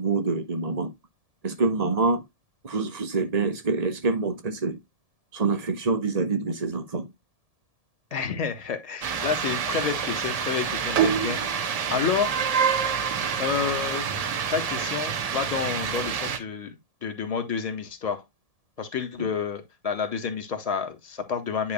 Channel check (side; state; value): left; late; 1.7 ms